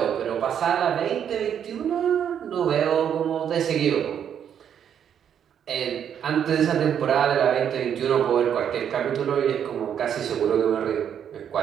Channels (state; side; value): quieter; left; 8.8 dB